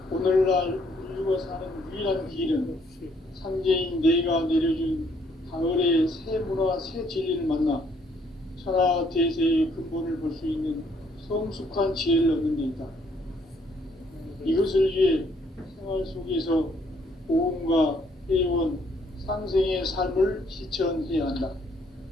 오늘날 인류가 사는 유일한 길은 상제인 내가 내려준 가을의 새 문화, 새 진리를 만나 천하 대세의 근본을 볼 수 있는 성숙한 지혜를 얻는 데 있다. 이것을 위해 생활 속에서 보험과 회원, 상생의 삶을 실천해야 한다.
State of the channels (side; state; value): both; normal; correlation 0.67